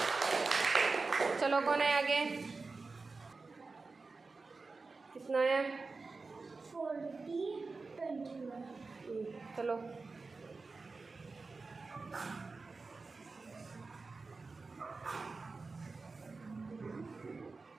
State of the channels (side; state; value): left; quieter; 4.0 dB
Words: चलो कौन है आगे? कितना है? 40 21। चलो